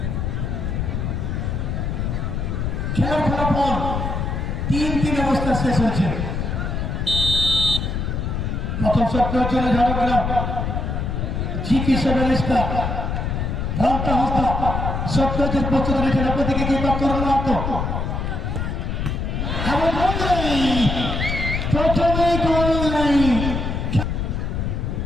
খেলার ফলাফল 3-3 অবস্থা শেষ হয়েছে। প্রথম শট নেওয়ার জন্য ঝাড়গ্রাম জিপি সেভেন স্টার রামটা হস্তা শট নেওয়ার প্রস্তুত রয়েছেন। আপনাদেরকে কি তরুণ মাত্র প্রথমেই গোল নাই।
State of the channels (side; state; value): left; noise; rumble, 2 dB below the sound